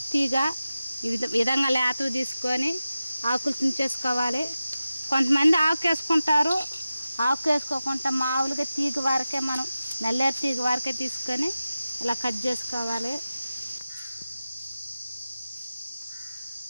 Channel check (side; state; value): both; inverted; correlation -0.94